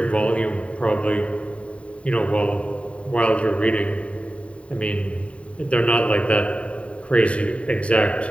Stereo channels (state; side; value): late; right; 0.063 ms